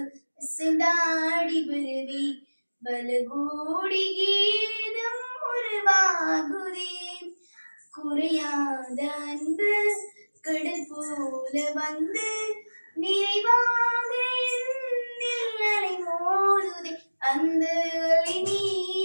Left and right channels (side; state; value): both; inverted; correlation -1.00